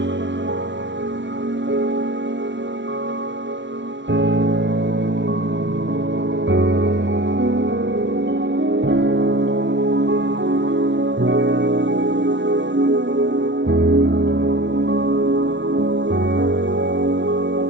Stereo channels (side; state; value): left; late; 0.53 ms